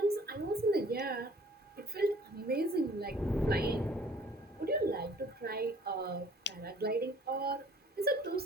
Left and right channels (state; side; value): normal; both; correlation 0.54